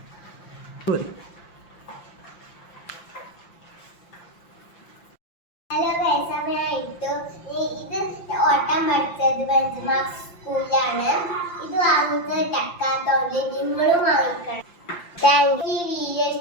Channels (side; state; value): right; late; 5.8 ms